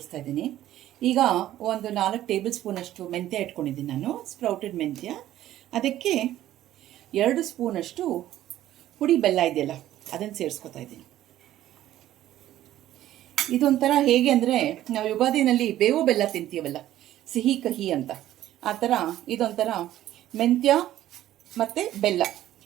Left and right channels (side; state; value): left; quieter; 13.3 dB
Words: ಇದ್ದೀನಿ. ಈಗ ಒಂದು 4 ಟೇಬಲ್ ಸ್ಪೂನಷ್ಟು ಮೆಂತ್ಯ ಇಟ್ಕೊಂಡಿದ್ದೀನಿ ನಾನು, ಸ್ಪ್ರೌಟೆಡ್ ಮೆಂತ್ಯ. ಅದಕ್ಕೆ 2 ಸ್ಪೂನಷ್ಟು ಹುಡಿ ಬೆಲ್ಲ ಇದೆಯಲ್ಲ ಅದನ್ನು ಸೇರಿಸ್ಕೊತಾ ಇದ್ದೀನಿ. ಇದೊಂಥರ ಹೇಗೆ ಅಂದರೆ, ನಾವು ಯುಗಾದಿನಲ್ಲಿ ಬೇವು ಬೆಲ್ಲ ತಿಂತೀವಲ್ಲ, ಸಿಹಿ ಕಹಿ ಅಂತ, ಆ ಥರ ಇದೊಂಥರ ಮೆಂತ್ಯ ಮತ್ತು ಬೆಲ್ಲ.